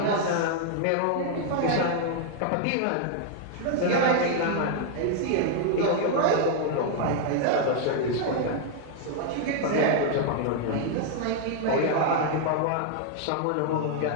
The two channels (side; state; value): both; different; correlation 0.00